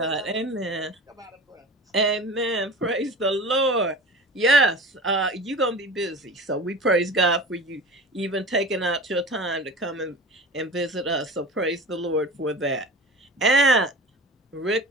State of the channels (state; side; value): normal; both; correlation 0.35